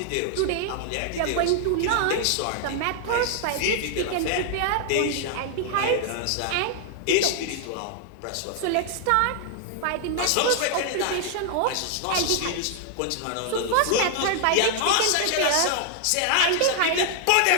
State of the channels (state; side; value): different; both; correlation 0.00